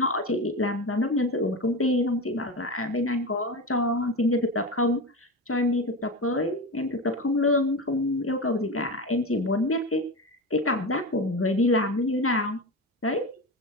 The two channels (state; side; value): normal; both; correlation 0.23